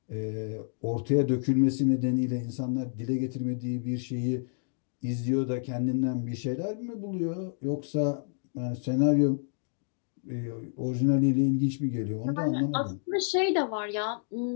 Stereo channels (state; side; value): silent; right; digital silence